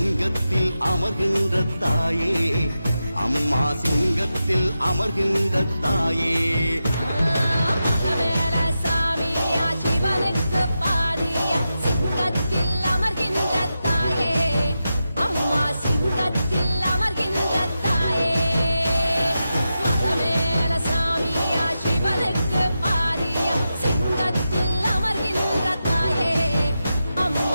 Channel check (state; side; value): inverted; both; correlation -0.90